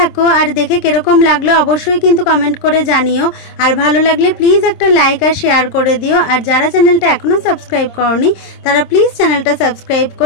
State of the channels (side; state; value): right; late; 26 ms